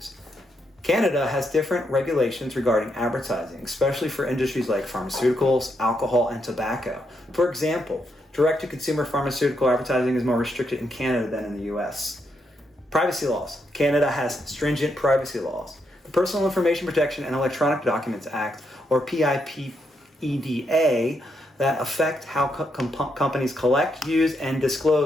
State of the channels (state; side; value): normal; both; correlation 0.79